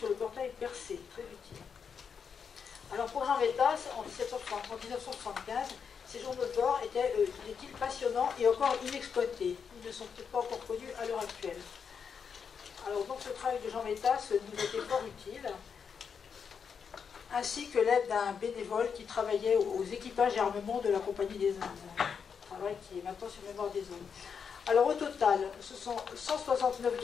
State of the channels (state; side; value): quieter; right; 6.5 dB